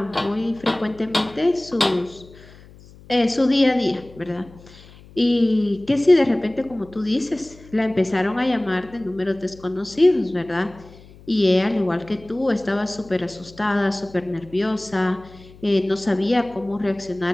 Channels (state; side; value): noise; left; hum, 22 dB below the sound